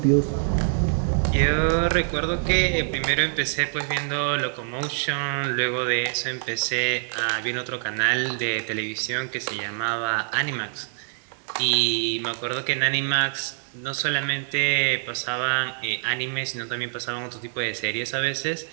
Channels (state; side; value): silent; left; digital silence